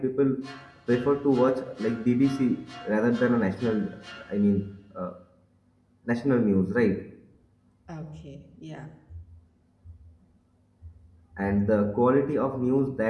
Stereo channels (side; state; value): both; identical; correlation 1.00